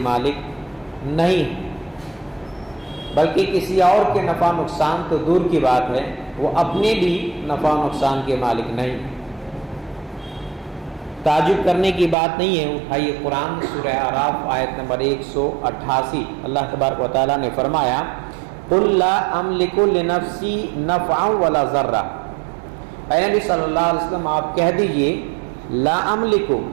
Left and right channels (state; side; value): drops out; left; at 12.2 s